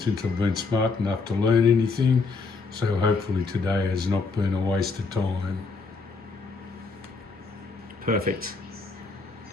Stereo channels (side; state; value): right; quieter; 4.4 dB